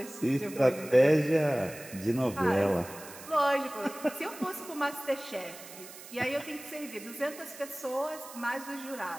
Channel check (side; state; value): right; noise; hiss, 15 dB below the sound